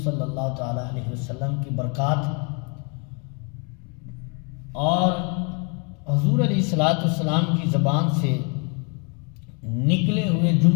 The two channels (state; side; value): quieter; right; 35.4 dB